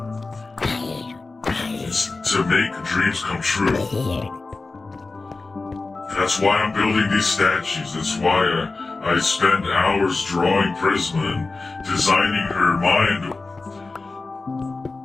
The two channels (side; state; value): right; quieter; 3.7 dB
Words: It's to make dreams come true. That's why I'm building these statues. That's why I spend hours drawing Prisma and designing her mind,